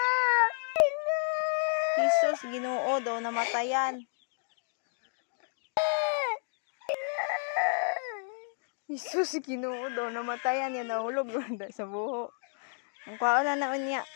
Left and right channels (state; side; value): silent; right; digital silence